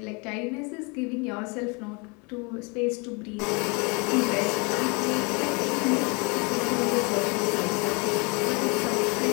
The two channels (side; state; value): right; quieter; 30.7 dB